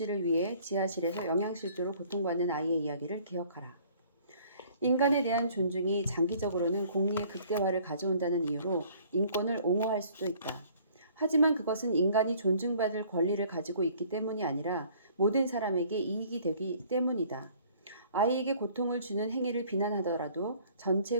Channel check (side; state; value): both; inverted; correlation -0.56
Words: 위해 지하실에서 영양실조로 고통받는 아이의 이야기를 기억하라. 인간에 대한 존중이 장기적으로는 공리의 극대화를 가져온다는 이유로 인권을 옹호할 수도 있다. 하지만 그것은 인간이 존중받을 권리를 가지고 있기 때문이 아니라 모든 사람에게 이익이 되기 때문이다. 아이에게 고통을 주는 행위를 비난하더라도